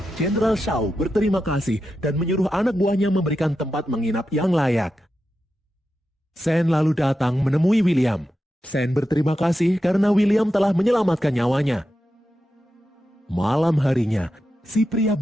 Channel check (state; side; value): normal; both; correlation 0.89